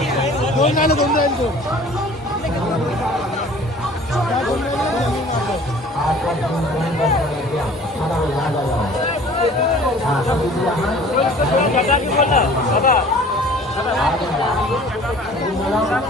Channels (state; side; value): normal; both; correlation 0.48